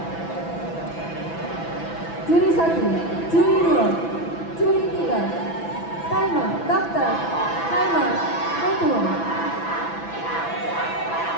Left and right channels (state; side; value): late; right; 6.0 ms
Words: Juri 1, juri 2, juri 3, timer, dokter, timer, ketua.